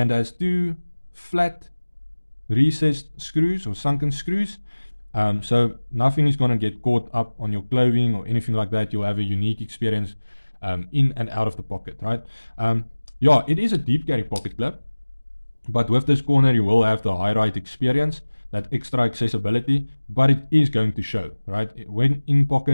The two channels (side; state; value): both; inverted; correlation -1.00